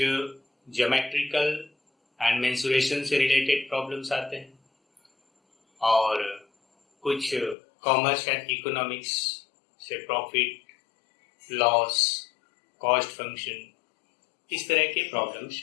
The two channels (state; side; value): drops out; right; at 7.6 s